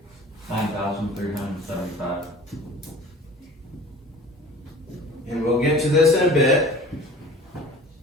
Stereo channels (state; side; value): normal; both; correlation 0.43